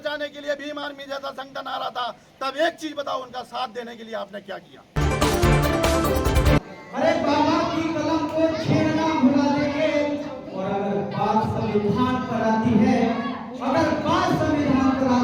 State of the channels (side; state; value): both; identical; correlation 1.00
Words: के लिए भीम आर्मी जैसा संगठन आ रहा था, तब एक चीज बताओ, उनका साथ देने के लिए आपने क्या किया? अरे बाबा की कलम को छेड़ना भुला देंगे। और अगर बात संविधान पर आती है, अगर बात संविधान पर